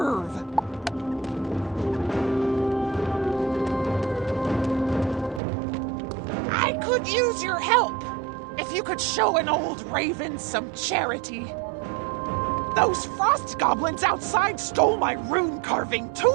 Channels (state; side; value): drops out; left; at 5.4 s